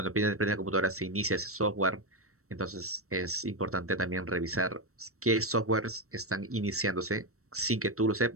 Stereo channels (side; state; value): left; late; 0.64 ms